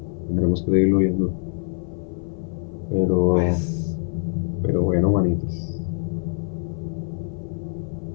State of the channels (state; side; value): silent; right; 63 dB below the other